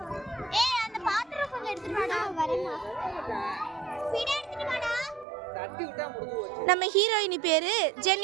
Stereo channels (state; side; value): drops out; left; at 5.2 s